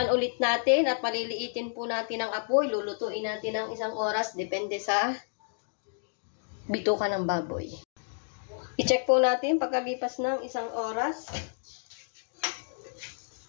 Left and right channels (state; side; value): silent; right; digital silence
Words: ulit natin at paliliitin po natin ang apoy. Lulutuin natin ng 1 oras. Depende sa bituka ng baboy. I-check po natin pagkalipas ng 1 oras.